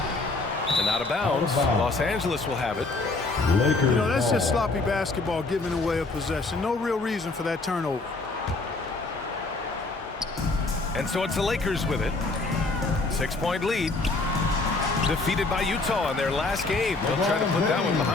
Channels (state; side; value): quieter; right; 3.4 dB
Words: the And out of bounds. Los Angeles will have it. Lakers. You know, that's just ball. sloppy basketball, giving away a possession. No real reason for that turnover. And so it's the Lakers with it. 6-point lead. Defeated by Utah in their last game. They'll try to put that one